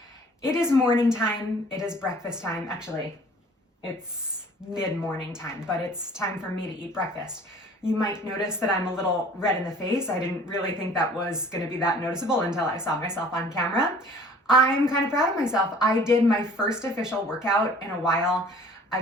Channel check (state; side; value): normal; both; correlation 0.51